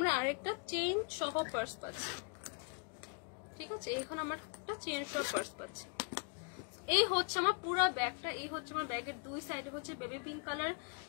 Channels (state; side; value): quieter; right; 36.1 dB